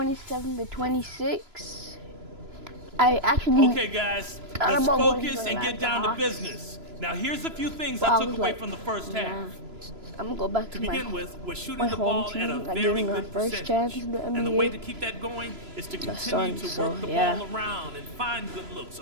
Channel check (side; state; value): left; late; 3.0 ms